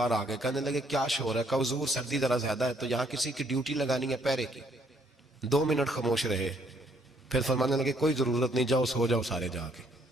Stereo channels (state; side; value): normal; both; correlation 0.67